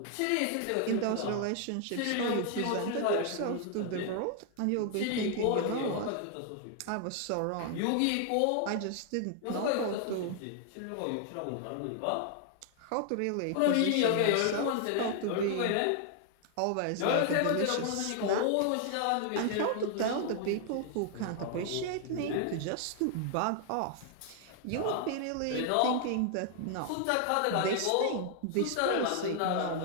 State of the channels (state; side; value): different; both; correlation 0.00